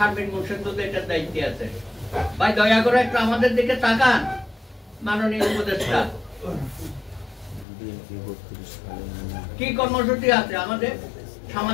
মুর্শিদুল এটার দায়িত্বে আছে। ভাই দয়া করে একটু আমাদের দিকে তাকান মাননীয় উপদেষ্টা, কি কর্মসূচি আছে আমাদের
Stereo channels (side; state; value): right; drops out; at 7.7 s